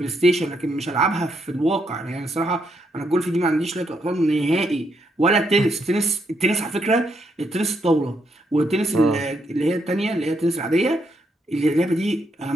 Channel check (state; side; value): normal; both; correlation 0.77